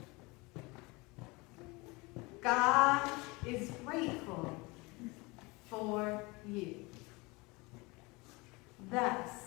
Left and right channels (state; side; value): quieter; right; 25.3 dB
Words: God is grateful for you. Thus,